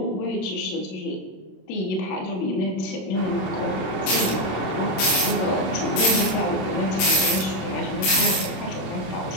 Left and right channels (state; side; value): late; right; 26 ms